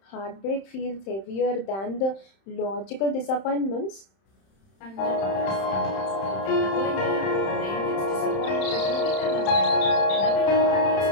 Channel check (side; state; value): right; late; 31 ms